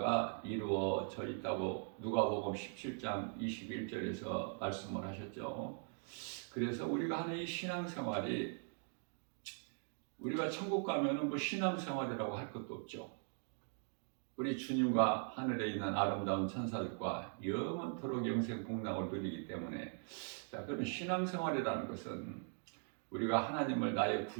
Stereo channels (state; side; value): silent; left; 51 dB below the other